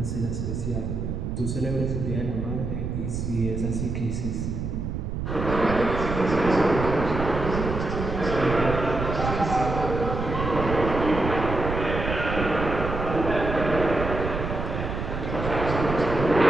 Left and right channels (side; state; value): right; noise; rumble, 4 dB below the sound